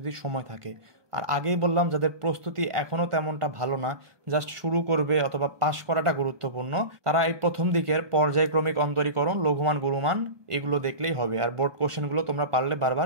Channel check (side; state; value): left; late; 1.2 ms